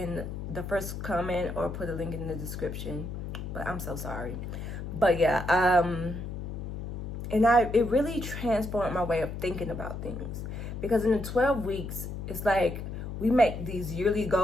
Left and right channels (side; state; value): left; noise; hum, 6 dB below the sound